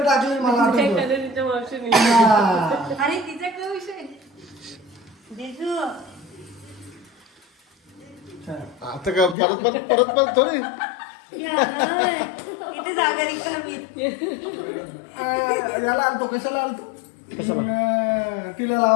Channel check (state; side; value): drops out; right; at 9.3 s